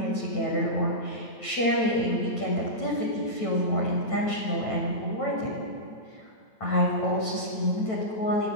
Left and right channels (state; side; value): late; right; 9.1 ms